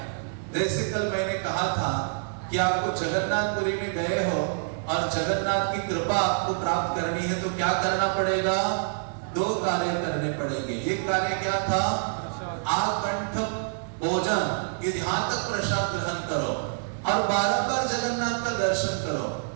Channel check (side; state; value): left; silent; digital silence